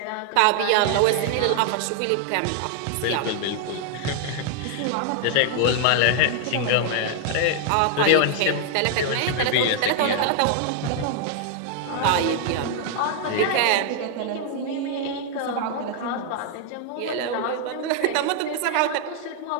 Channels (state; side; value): different; both; correlation 0.00